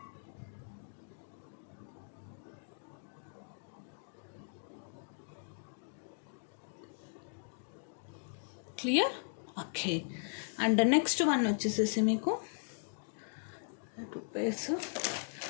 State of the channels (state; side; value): silent; right; digital silence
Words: Clear? Okay, and next one వచ్చేసేసి మీకు 2 pairs